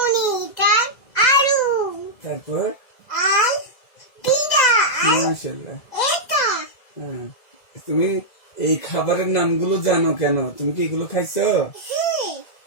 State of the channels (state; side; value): late; right; 2.0 ms